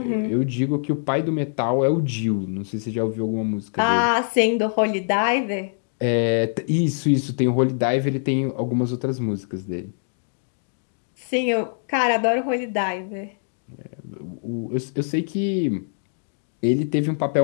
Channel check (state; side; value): silent; right; digital silence